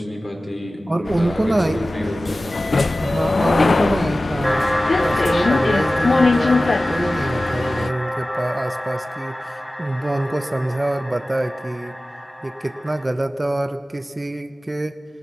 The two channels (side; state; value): both; normal; correlation 0.96